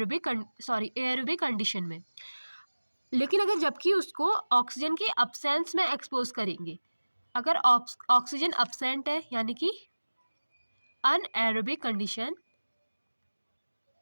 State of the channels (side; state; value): both; inverted; correlation -1.00